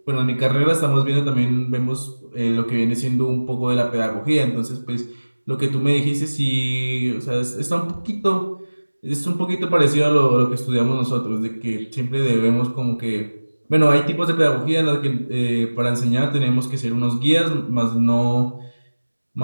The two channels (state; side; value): inverted; both; correlation -1.00